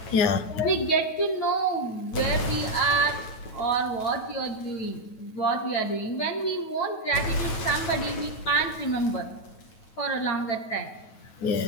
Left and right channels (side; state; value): right; late; 9.2 ms